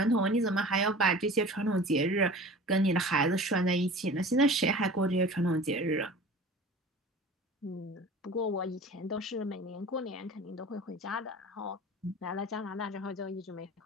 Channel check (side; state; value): both; normal; correlation 0.40